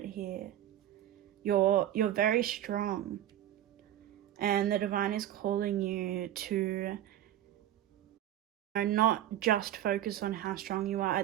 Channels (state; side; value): quieter; left; 12.2 dB